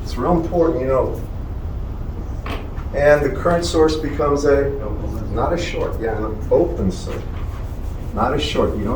It's real important, you know. And the current source becomes a, not a short, yeah, an open circuit. Not a short, you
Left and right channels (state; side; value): identical; both; correlation 1.00